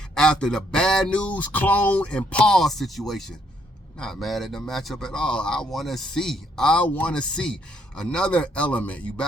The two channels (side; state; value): both; normal; correlation 0.71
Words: after the bad news, clone, and Paul situation. Not mad at the matchup at all. I want to see another element. You